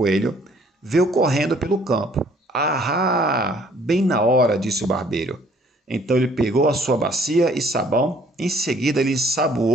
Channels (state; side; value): normal; both; correlation 0.59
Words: veio correndo pelo campo. Ahá! Bem na hora, disse o barbeiro. Então ele pegou a sua bacia e sabão, em seguida ele